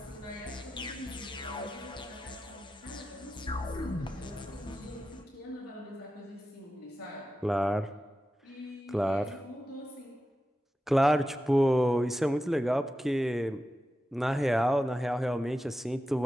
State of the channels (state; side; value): normal; both; correlation 0.91